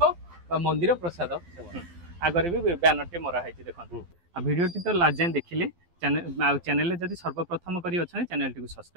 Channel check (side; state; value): left; late; 12 ms